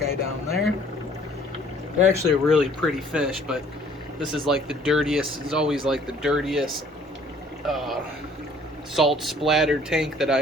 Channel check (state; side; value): normal; both; correlation 0.57